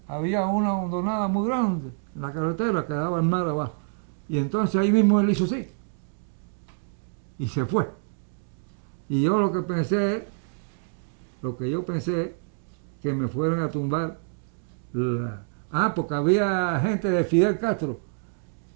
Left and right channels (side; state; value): left; silent; digital silence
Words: Había una hondonada muy grande en la carretera que daba al mar abajo. Y entonces ahí mismo él hizo así. Y se fue. Y yo lo que yo pensé, que me fueran a tumbar porque había gente de Fidel Castro